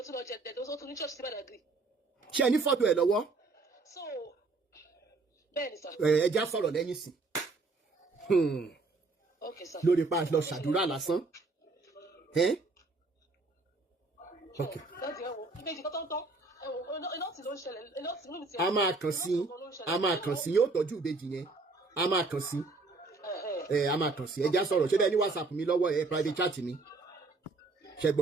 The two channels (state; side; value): quieter; left; 3.6 dB